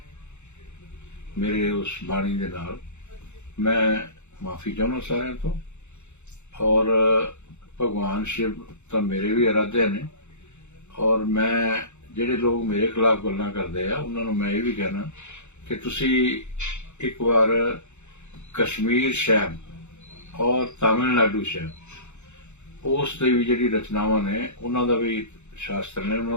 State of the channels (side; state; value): right; late; 0.83 ms